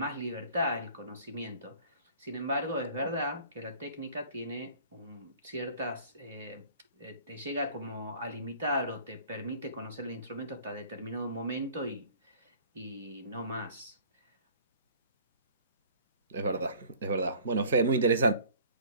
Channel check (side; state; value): both; inverted; correlation -0.50